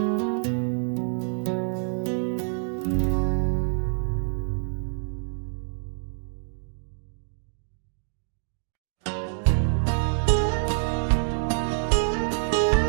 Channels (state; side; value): silent; left; digital silence